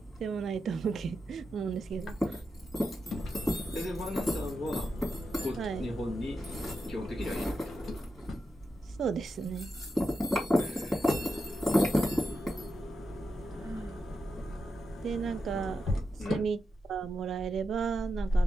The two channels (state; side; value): normal; both; correlation 0.87